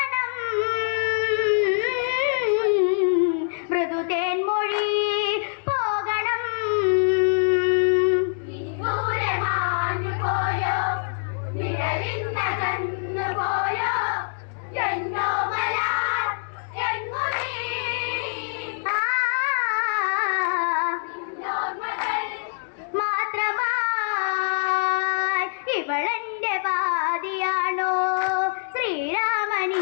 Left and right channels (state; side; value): silent; right; 62 dB below the other